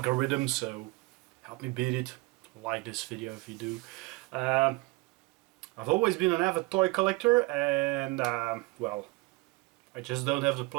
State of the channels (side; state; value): left; quieter; 24.0 dB